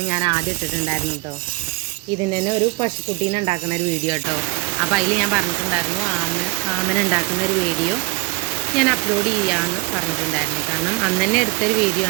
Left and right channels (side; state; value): left; quieter; 24.8 dB